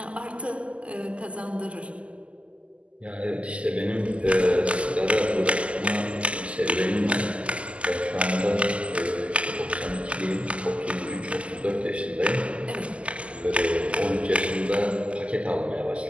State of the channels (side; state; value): left; late; 0.058 ms